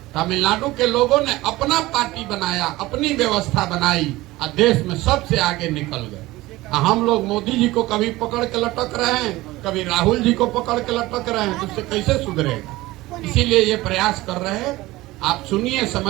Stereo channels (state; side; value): quieter; left; 18.7 dB